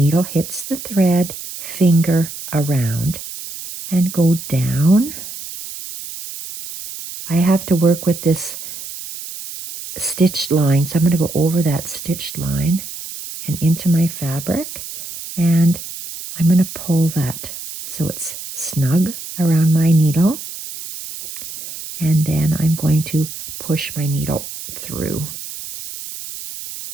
hits the thread, finger around, and go down. I have to work with this stitched line, so I'm going to go over that stitched line and into my fabric, and I'm going to pull that so it's snug around my needle, and then I'm going to push my needle through.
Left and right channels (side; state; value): right; noise; hiss, 11 dB below the sound